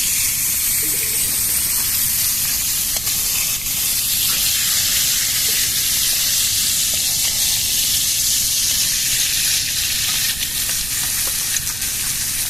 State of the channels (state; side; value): noise; right; rumble, 11 dB below the sound